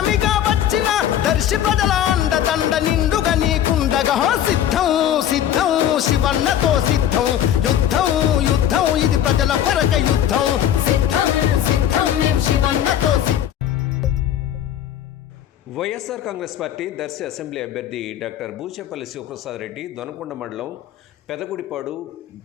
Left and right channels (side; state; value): right; quieter; 10.7 dB